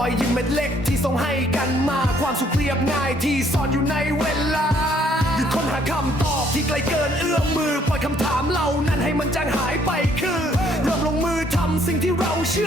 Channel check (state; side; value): normal; both; correlation 0.65